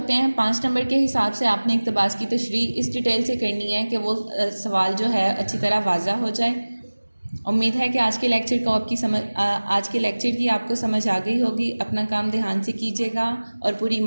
ہیں۔ 5 نمبر کے حساب سے آپ نے اقتباس کی تشریح اس ڈیٹیل سے کرنی ہے کہ وہ سوال جو ہے اچھی طرح واضح ہو جائے۔ امید ہے کہ آج کے لیکچر کی آپ کو سمجھ آ گئی ہوگی۔ اپنا کام دھیان سے کیجیے گا اور پوری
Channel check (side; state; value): both; inverted; correlation -1.00